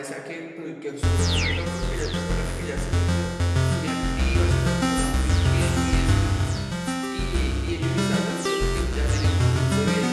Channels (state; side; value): identical; both; correlation 1.00